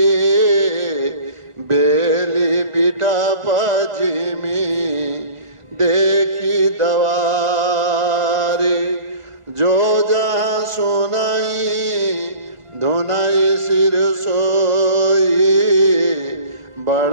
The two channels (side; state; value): left; late; 1.5 ms